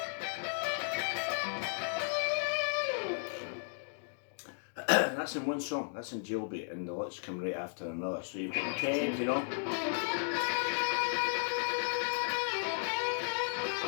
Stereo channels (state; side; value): silent; right; digital silence